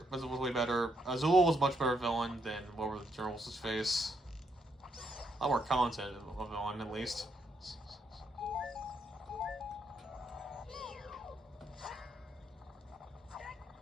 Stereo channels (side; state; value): both; normal; correlation 0.76